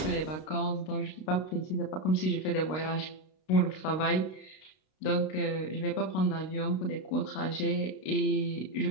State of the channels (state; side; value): late; right; 32 ms